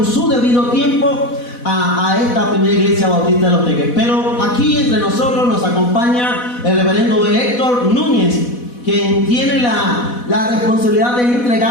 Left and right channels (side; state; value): right; late; 4.1 ms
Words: su debido tiempo a esta primera iglesia bautista de Los Teques. Pero aquí entre nosotros nos acompaña el reverendo Héctor Núñez, quien tiene la responsabilidad de